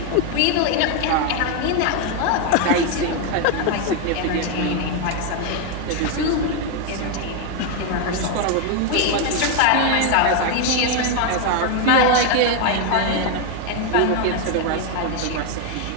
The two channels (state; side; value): different; both; correlation 0.01